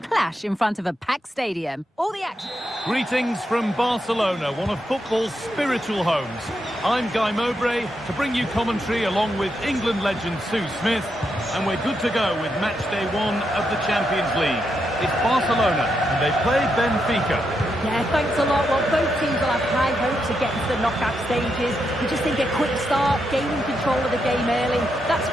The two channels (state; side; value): normal; both; correlation 0.83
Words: in front of a packed stadium. All the action. Greetings from Barcelona, one of football's spiritual homes. I'm Guy Mowbray to bring you commentary along with England legend Sue Smith, and we're good to go with match day 1 of the Champions League. It's Barcelona and they play Benfica. Yeah, thanks a lot. Well, both teams will have high hopes of getting to the knockout stages. We just think a quick start, gaining control of the game early, that's